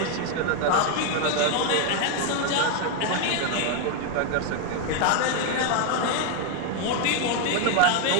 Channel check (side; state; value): both; different; correlation 0.01